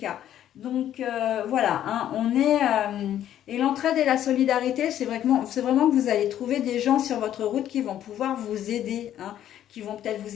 Donc voilà, hein, et l'entraide et la solidarité, c'est vraiment que vous allez trouver des gens sur votre route qui vont pouvoir vous aider, hein, qui vont peut-être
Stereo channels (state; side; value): quieter; right; 11.3 dB